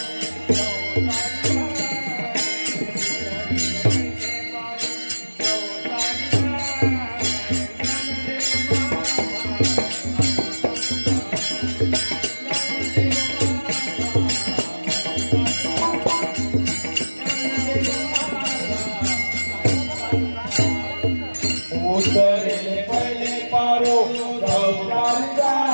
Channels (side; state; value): both; inverted; correlation -1.00